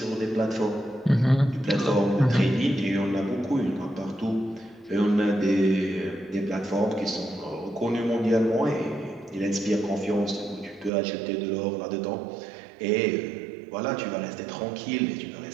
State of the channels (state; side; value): drops out; left; at 10.9 s